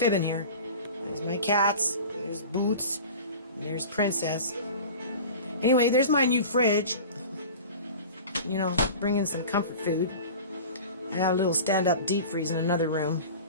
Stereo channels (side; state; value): both; inverted; correlation -0.37